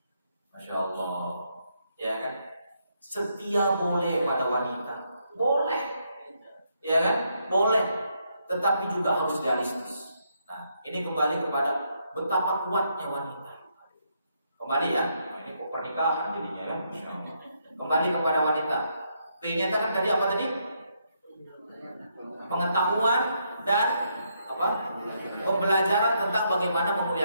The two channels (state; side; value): inverted; both; correlation -0.77